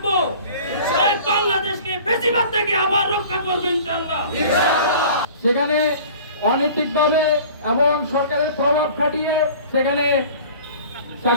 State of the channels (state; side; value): inverted; both; correlation -0.45